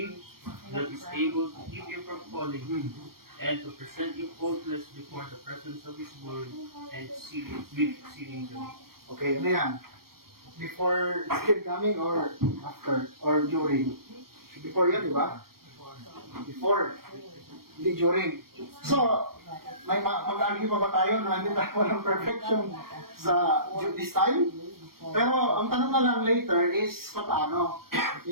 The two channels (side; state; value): left; late; 0.93 ms